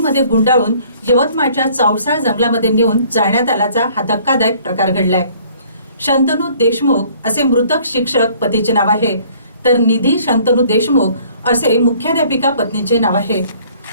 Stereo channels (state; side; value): inverted; both; correlation -0.57